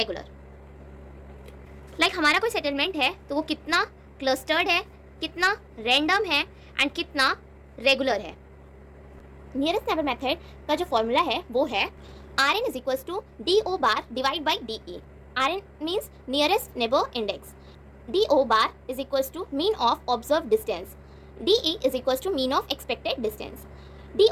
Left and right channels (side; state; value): both; identical; correlation 1.00